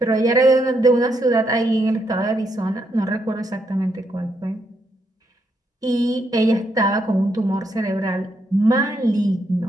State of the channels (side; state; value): both; normal; correlation 0.77